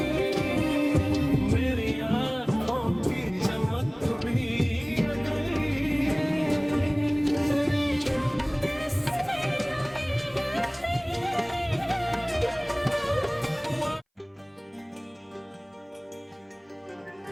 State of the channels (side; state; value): both; identical; correlation 1.00